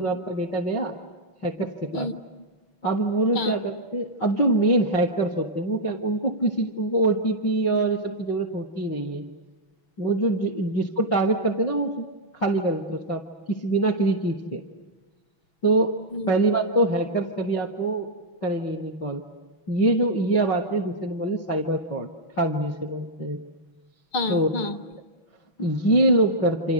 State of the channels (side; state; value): right; late; 6.1 ms